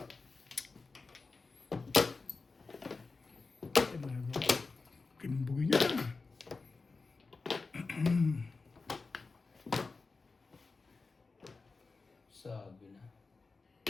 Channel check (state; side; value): quieter; right; 4.1 dB